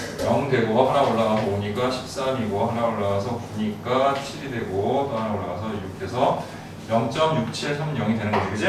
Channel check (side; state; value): both; identical; correlation 1.00